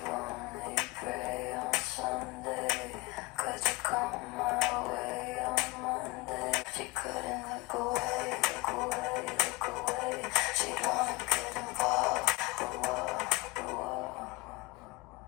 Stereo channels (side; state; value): right; quieter; 24.1 dB